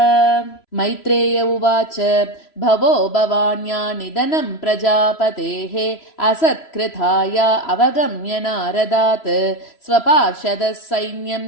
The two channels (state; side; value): late; right; 3.0 ms